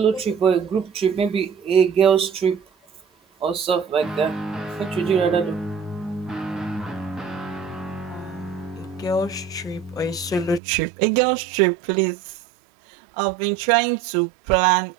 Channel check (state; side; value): drops out; left; at 10.6 s